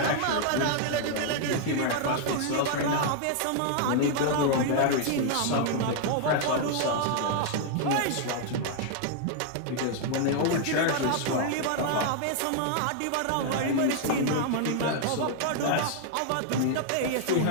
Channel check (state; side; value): different; both; correlation 0.00